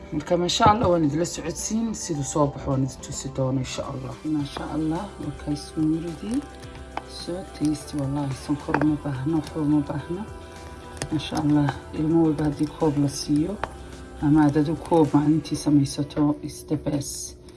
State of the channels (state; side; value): identical; both; correlation 1.00